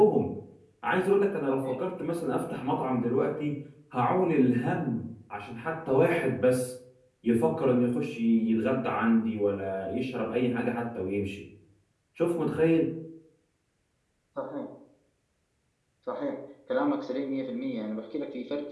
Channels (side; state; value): both; identical; correlation 1.00